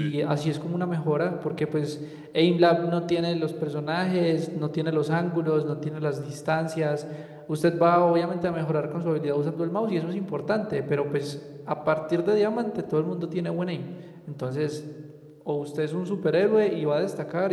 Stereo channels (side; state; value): both; identical; correlation 1.00